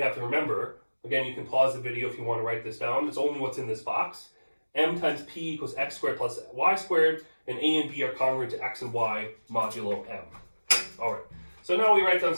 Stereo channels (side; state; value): both; inverted; correlation -1.00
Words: to remember. Again, you can pause the video if you want to write this down. It's only what's in this box. M times p equals x squared plus y squared, and a and b are congruent to x and y modulo m. All right, so now we write down